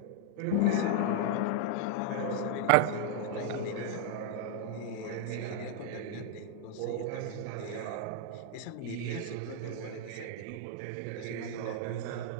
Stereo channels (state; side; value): different; both; correlation 0.00